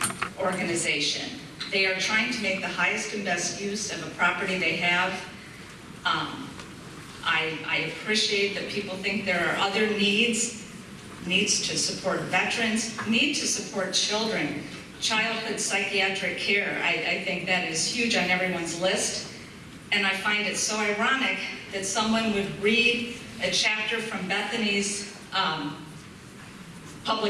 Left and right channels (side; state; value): both; identical; correlation 1.00